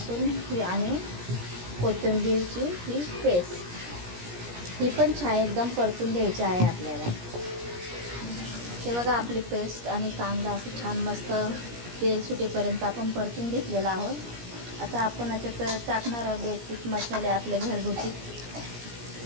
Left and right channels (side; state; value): left; late; 17 ms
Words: ही आणि कोथिंबीरची ही पेस्ट. ही पण छान एकदम परतून घ्यायची आहे आपल्याला. हे बघा, आपली पेस्ट आणि कांदा असं छान मस्त तेल सुटेपर्यंत आपण परतून घेतलेला आहोत. आता आपण याच्यात टाकणार आहोत बेसिक मसाले आपले घरगुती.